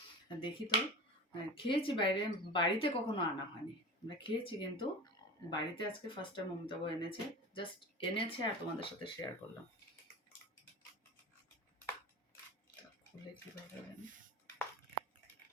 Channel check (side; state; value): both; normal; correlation 0.32